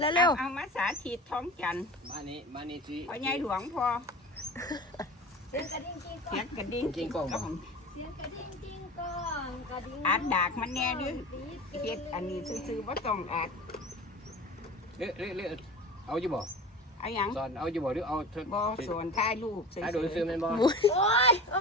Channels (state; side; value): normal; both; correlation 0.35